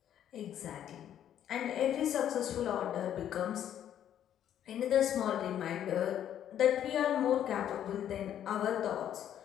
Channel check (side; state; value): right; quieter; 10.4 dB